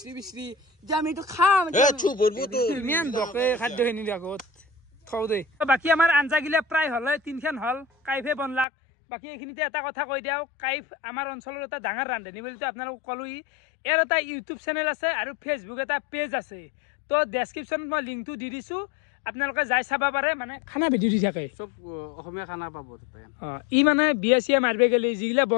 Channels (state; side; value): drops out; right; at 8.7 s